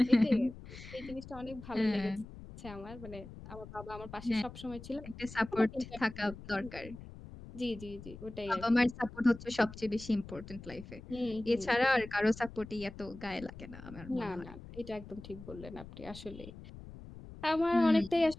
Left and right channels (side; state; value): left; noise; rumble, 15 dB below the sound